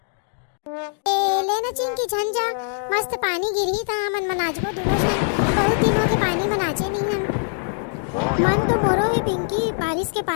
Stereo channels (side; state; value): right; silent; digital silence